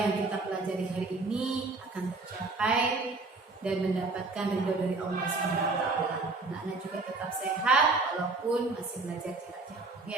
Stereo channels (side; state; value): left; quieter; 3.6 dB